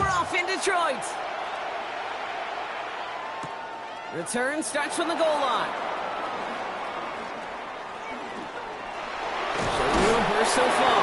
off in Detroit. Return starts from the goal line. So real burst so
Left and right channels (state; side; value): identical; both; correlation 1.00